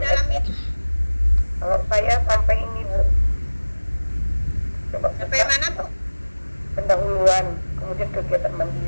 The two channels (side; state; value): both; inverted; correlation -1.00